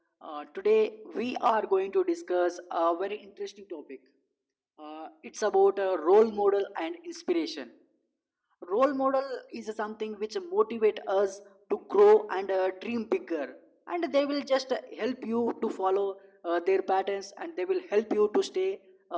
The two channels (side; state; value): both; identical; correlation 1.00